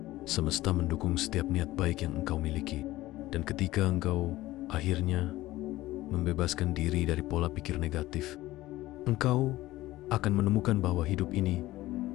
Semesta mendukung setiap niat baik yang engkau miliki. Dan ketika engkau akhirnya membebaskan diri dari pola pikir negatif, engkau akan menemukan bahwa hidup ini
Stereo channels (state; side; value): quieter; right; 16.9 dB